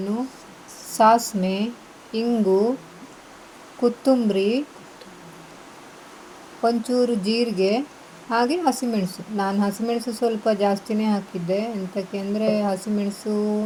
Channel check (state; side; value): identical; both; correlation 1.00